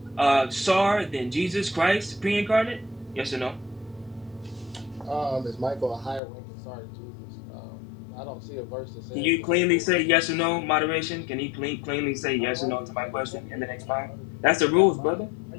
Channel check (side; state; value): right; drops out; at 6.2 s